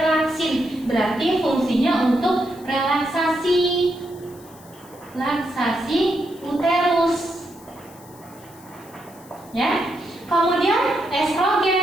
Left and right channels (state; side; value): noise; left; hiss, 24 dB below the sound